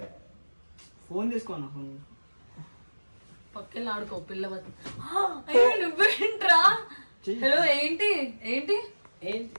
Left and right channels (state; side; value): inverted; both; correlation -1.00